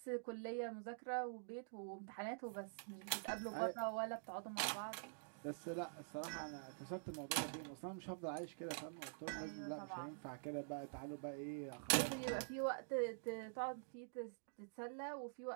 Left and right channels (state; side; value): silent; left; digital silence